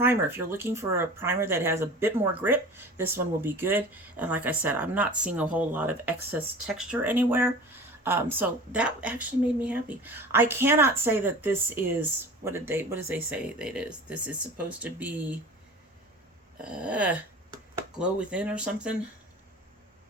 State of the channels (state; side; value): normal; both; correlation 0.38